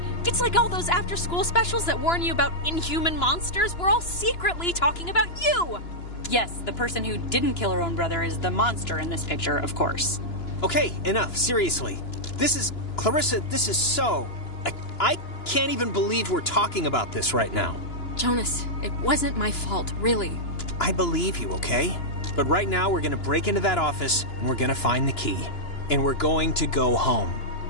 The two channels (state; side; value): late; right; 2.9 ms